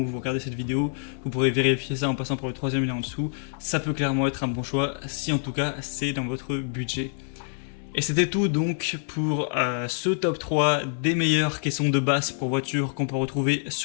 où vous regardez cette vidéo, vous pourrez vérifier ça en passant par le troisième lien en dessous. Ça peut clairement être un bon choix, si en tout cas c'est dans votre budget. Et c'était tout donc pour ce top 3 des meilleures caissons de base pour voitures qu'on peut retrouver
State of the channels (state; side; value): silent; right; 61 dB below the other